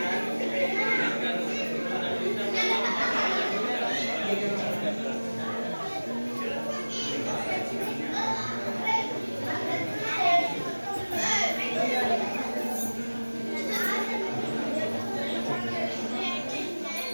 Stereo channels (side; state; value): both; inverted; correlation -1.00